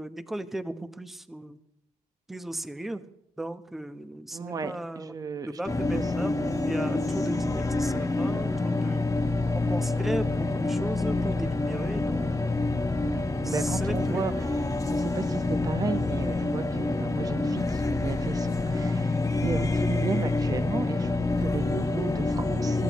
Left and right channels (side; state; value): both; normal; correlation 0.87